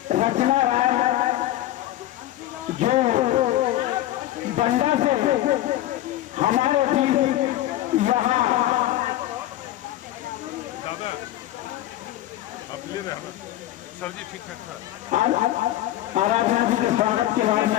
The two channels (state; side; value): quieter; right; 14.3 dB